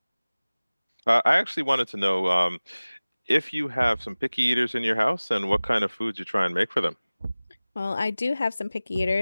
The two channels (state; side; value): inverted; both; correlation -0.99